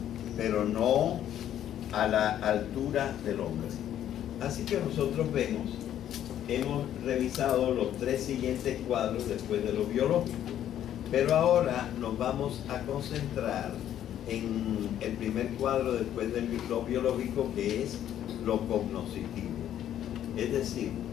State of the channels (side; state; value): right; quieter; 11.0 dB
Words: pero no a la altura del hombre. Así que nosotros vemos hemos revisado los 3 siguientes cuadros después de lo biológico. Pero ahora nos vamos a concentrar en el primer cuadro después de lo biológico, que es lo cognoscitivo. Es decir,